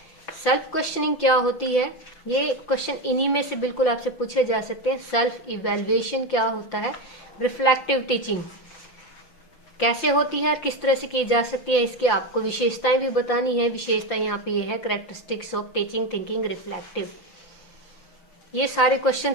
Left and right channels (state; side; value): late; right; 5.8 ms